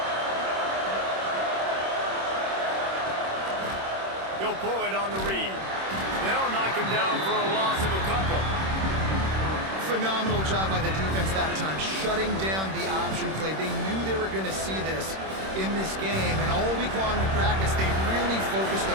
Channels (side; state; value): left; late; 26 ms